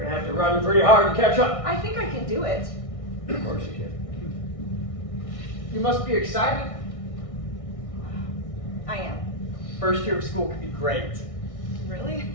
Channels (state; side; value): late; right; 1.6 ms